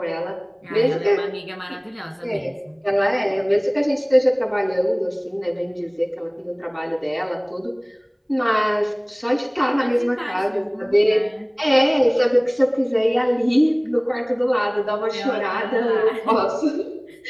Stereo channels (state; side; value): identical; both; correlation 1.00